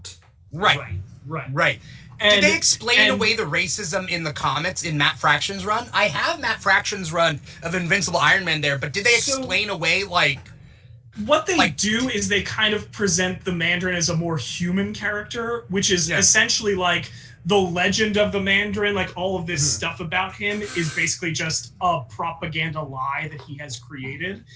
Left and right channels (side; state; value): both; identical; correlation 1.00